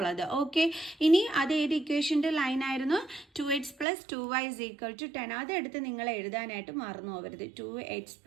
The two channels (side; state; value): left; drops out; at 3.9 s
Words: ഓക്കെ, ഇനി അത് ഏത് ഇക്വേഷൻ്റെ ലൈനായിരുന്നു? 2x + 2y = 10. അതെടുത്ത് നിങ്ങൾ എഴുതാനായിട്ട് മറന്നു പോകരുത്. 2x